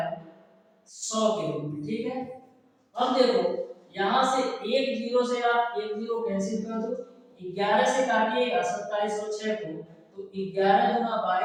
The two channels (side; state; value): both; identical; correlation 1.00